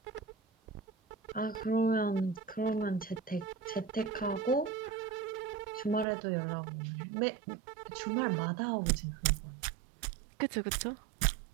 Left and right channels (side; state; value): left; drops out; at 6.1 s